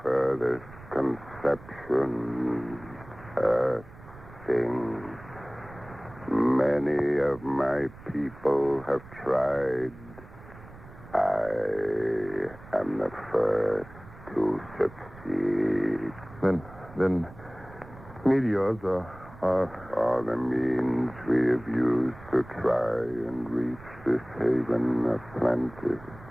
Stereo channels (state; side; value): noise; right; rumble, 19 dB below the sound